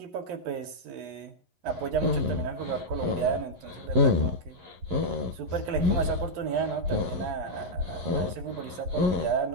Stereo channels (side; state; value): left; late; 12 ms